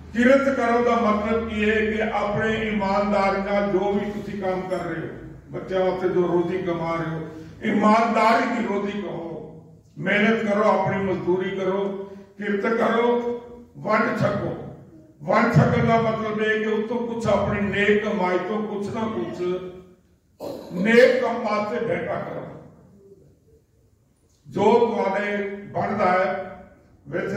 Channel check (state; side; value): identical; both; correlation 1.00